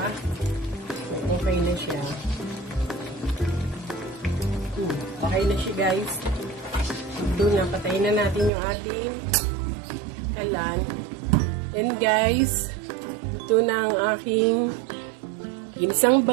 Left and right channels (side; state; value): left; drops out; at 8.5 s